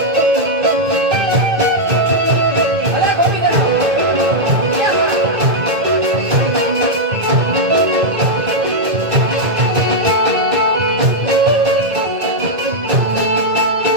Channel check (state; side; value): late; left; 2.1 ms